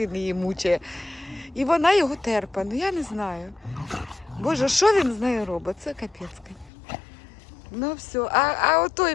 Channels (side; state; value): right; drops out; at 6.7 s